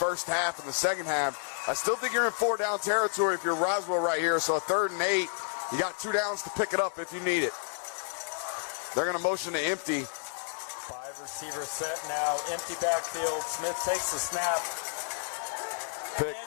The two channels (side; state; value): right; silent; digital silence